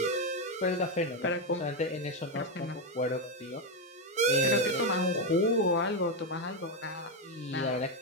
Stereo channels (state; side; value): normal; both; correlation 0.06